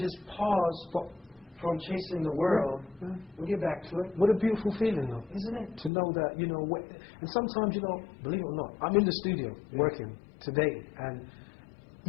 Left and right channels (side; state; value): right; drops out; at 5.9 s